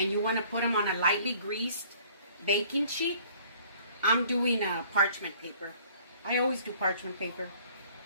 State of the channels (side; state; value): both; inverted; correlation -0.54